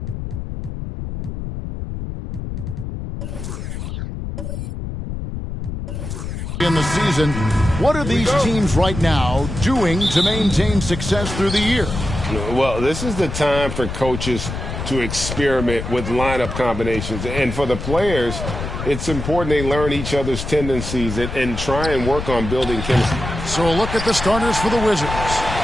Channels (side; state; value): left; noise; rumble, 6 dB below the sound